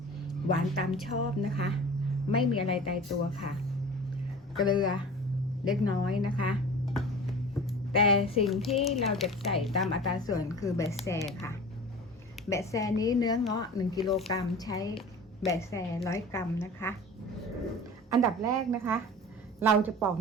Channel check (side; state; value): both; normal; correlation 0.38